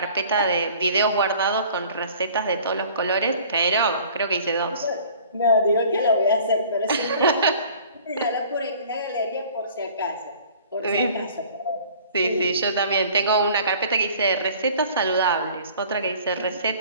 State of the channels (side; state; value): both; inverted; correlation -0.49